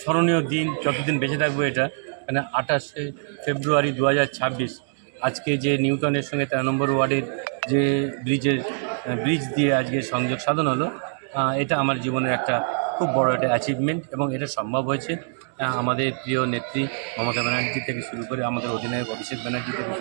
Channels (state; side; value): silent; left; digital silence